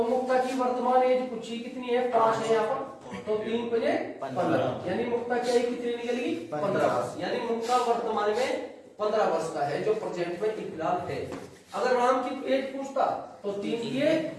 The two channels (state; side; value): identical; both; correlation 1.00